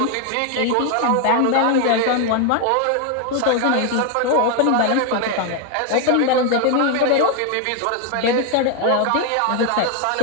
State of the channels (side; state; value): both; different; correlation 0.00